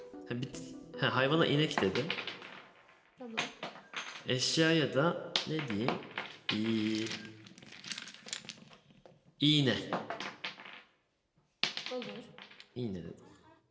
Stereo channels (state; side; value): identical; both; correlation 1.00